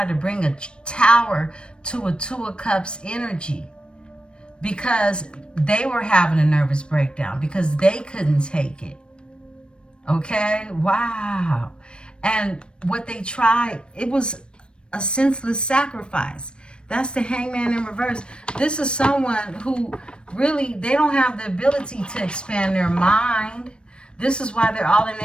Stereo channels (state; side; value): late; right; 0.055 ms